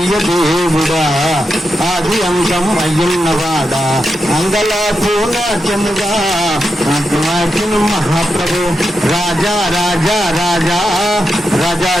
దేవుడా ఆది అంతం అయ్యున్నవాడా అంగలాపు నాట్యముగా నాట్యమాటిను మహాప్రభు. రాజా రాజా రాజా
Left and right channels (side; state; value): both; normal; correlation 0.87